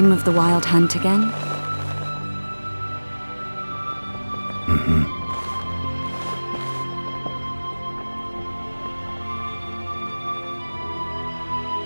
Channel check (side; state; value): both; inverted; correlation -1.00